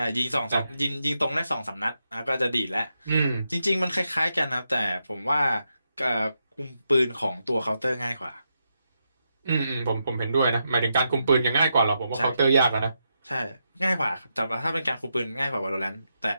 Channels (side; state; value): both; inverted; correlation -0.85